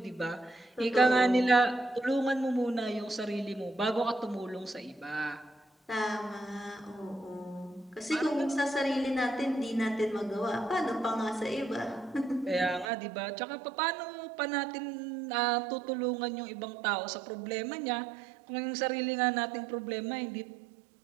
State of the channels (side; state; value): left; drops out; at 12.9 s